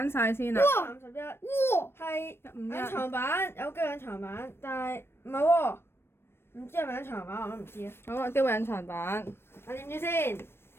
晒先啦。 31。哇！係151。隱藏版，有機隱藏版，但係唔係喎，唔知係咪隱藏版我都唔知啊。好啊，機會隱藏版。我點知先？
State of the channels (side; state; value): right; late; 0.12 ms